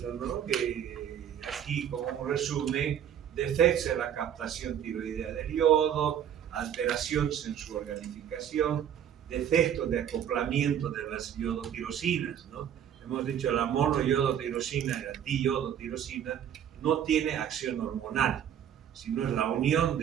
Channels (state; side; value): quieter; left; 9.5 dB